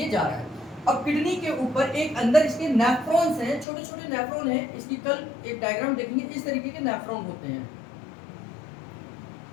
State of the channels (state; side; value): drops out; right; at 3.7 s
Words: जा रहा है। अब किडनी के ऊपर एक अंदर इसके नेफ्रॉन्स हैं, छोटे छोटे नेफ्रॉन हैं। इसकी कल एक डायग्राम देखेंगे, इस तरीके के नेफ्रॉन होते हैं,